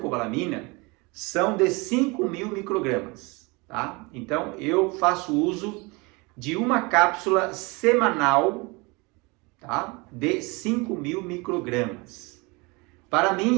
são de 5.000 microgramas, tá? Então, eu faço uso de uma cápsula semanal, tá? De 5.000 microgramas. Para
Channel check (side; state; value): left; quieter; 26.9 dB